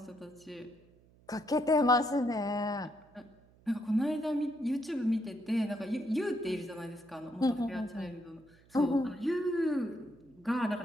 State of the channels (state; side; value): noise; right; hum, 28 dB below the sound